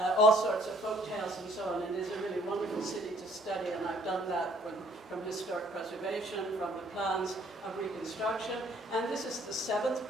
sorts of folk tales and so on. It is a really wonderful city to study, and I've done that from historic preservation, from the plans of reconstruction. And this is the 7th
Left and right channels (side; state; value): both; normal; correlation 0.61